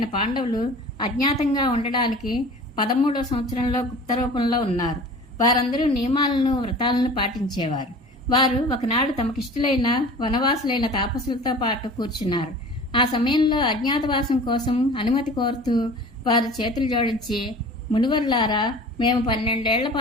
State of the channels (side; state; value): both; normal; correlation 0.42